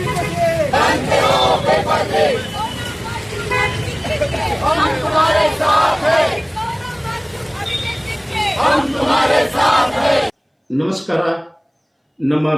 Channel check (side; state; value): both; identical; correlation 1.00